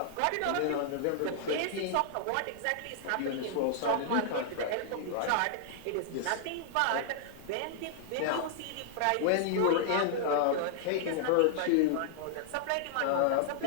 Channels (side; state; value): both; different; correlation -0.01